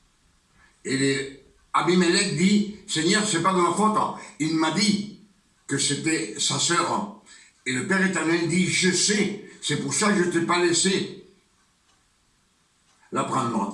Et Abimelech dit, Seigneur, c'est pas de ma faute. Il m'a dit que c'était sa sœur. Et le Père éternel dit, je sais, c'est pour ça que je ne t'ai pas laissé la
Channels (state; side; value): identical; both; correlation 1.00